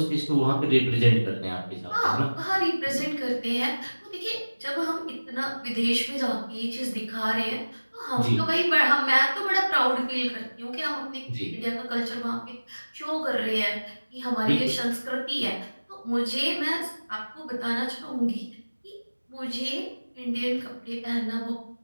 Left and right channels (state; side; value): inverted; both; correlation -1.00